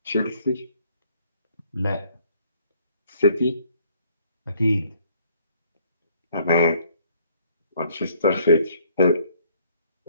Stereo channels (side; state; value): both; inverted; correlation -0.63